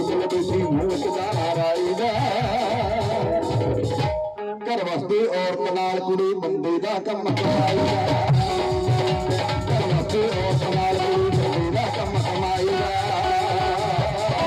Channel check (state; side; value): identical; both; correlation 1.00